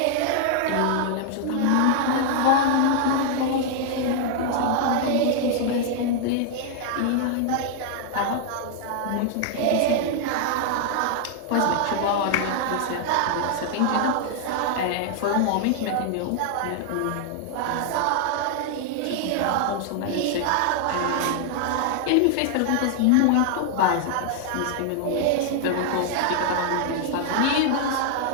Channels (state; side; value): different; both; correlation 0.00